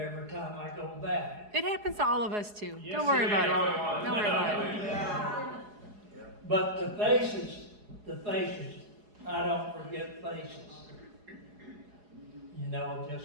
time I go back. It happens to all of us too. Yes, Don't worry it about is. it. Don't worry about it. But the faces, I don't forget faces. You know,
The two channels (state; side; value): late; left; 4.8 ms